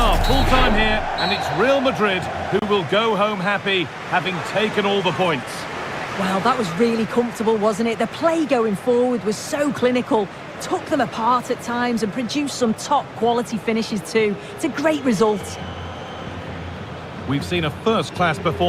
full time here, and it's Real Madrid who will go home happy, having taken all the points. Well, that was really comfortable, wasn't it? The play going forward was so clinical, took them apart at times and produced some top-quality finishes too. It's a great result. We've seen a first-class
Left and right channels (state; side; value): identical; both; correlation 1.00